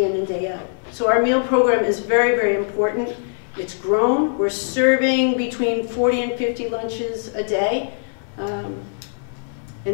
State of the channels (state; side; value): silent; right; 60 dB below the other